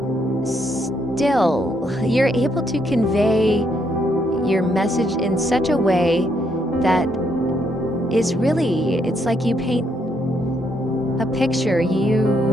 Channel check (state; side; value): normal; both; correlation 0.74